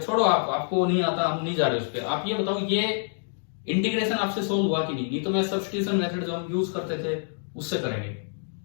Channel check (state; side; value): silent; right; digital silence